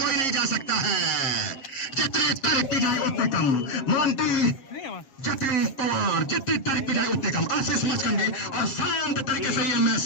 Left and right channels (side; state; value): right; late; 7.5 ms